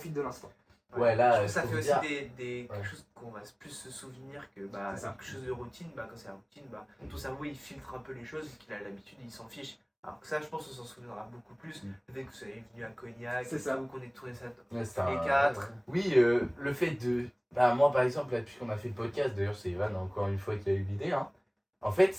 de l'instant. Ouais, là, Je trouve que ça faut fait aussi dire- quelque Ouais. chose qu'on va plus se souvenir que bah, C'est ça. quelque chose de routine. Bah, quand c'est la routine, bah, ton cerveau il filtre un peu les choses, qu'il a l'habitude, il s'en fiche. Alors que ça, je pense qu'on s'en souviendra beaucoup plus. Le fait que vous soyez venu à Cognac, C'est et ça. tout, qu'on ait tourné ça. Ouais, c'est Les un- 4. Oui, le fait de. Bah, moi, par exemple, là, depuis qu'on a fait le podcast, d'ailleurs, c'est Evan, encore une fois, qui a eu l'idée. Hein. En fait,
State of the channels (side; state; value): both; identical; correlation 1.00